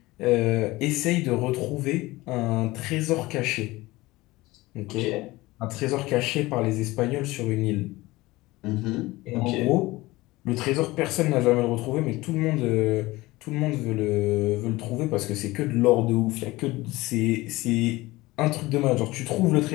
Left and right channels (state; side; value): quieter; right; 20.0 dB